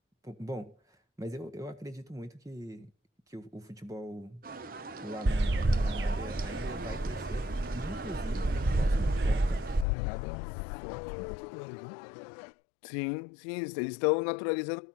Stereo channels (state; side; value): drops out; right; at 9.9 s